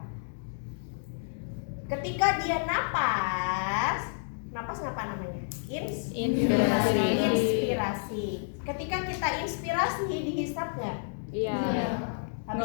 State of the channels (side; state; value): right; silent; digital silence